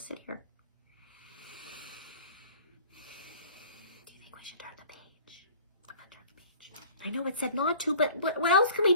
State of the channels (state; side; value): inverted; both; correlation -0.48